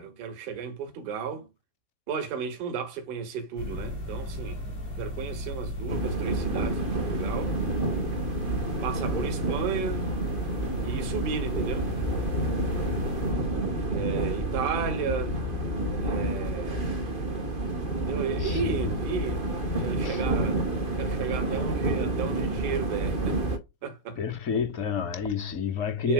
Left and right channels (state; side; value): late; right; 2.5 ms